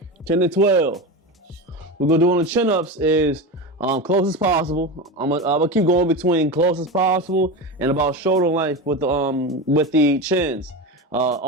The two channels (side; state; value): both; normal; correlation 0.22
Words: 10 to 12. We're gonna do on the chin-ups is close as possible. I'm gonna keep going between close as possible and about shoulder length with the chins.